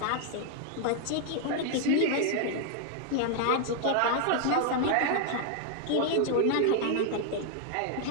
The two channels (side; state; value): both; different; correlation 0.00